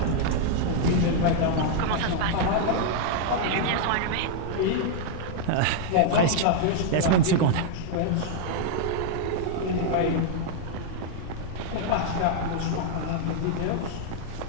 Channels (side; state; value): both; different; correlation -0.01